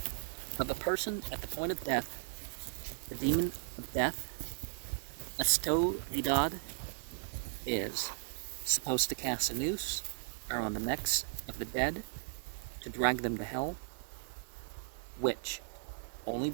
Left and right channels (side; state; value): left; silent; digital silence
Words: Of a person at the point of death, the demon of death, Astovidad, is supposed to cast a noose around the necks of the dead to drag them to hell, which only